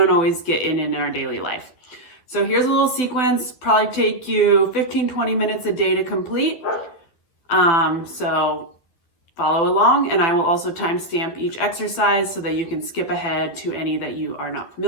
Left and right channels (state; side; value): late; right; 12 ms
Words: always get in our daily life. So here's a little sequence, probably take you 15-20 minutes a day to complete. So follow along, and I will also timestamp each exercise so that you can skip ahead to any that you are not